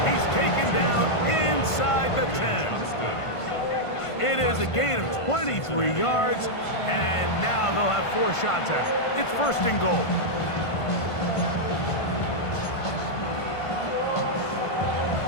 He's taken down inside the 10. It is a gain of 23 yards. And now they'll have 4 shots at it. It's 1st and goal.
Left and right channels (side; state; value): right; late; 1.5 ms